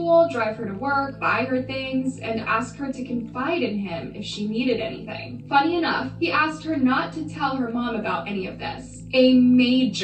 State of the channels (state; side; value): identical; both; correlation 1.00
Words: drive her to work, buy her things, and ask her to confide in him if she needed anything. Funny enough, he asked her not to tell her mom about any of this. A